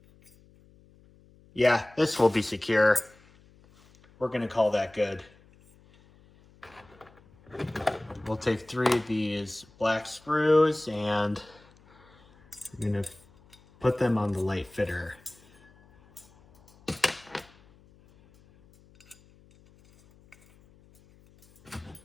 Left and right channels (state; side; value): noise; left; hum, 28 dB below the sound